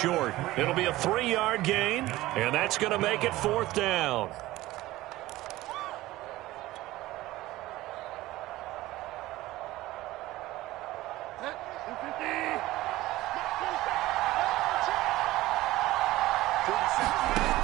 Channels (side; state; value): left; quieter; 17.3 dB